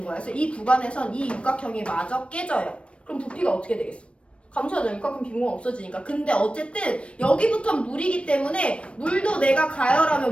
거야. 그래서 이 구간에선 이 육각형이 마저 깨져요. 그럼 부피가 어떻게 되겠어? 감소하죠. 육각형 빈 공간 없어지니까. 근데 어쨌든 여기부터 물이기 때문에 물도 내가 가열하면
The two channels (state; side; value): late; right; 0.060 ms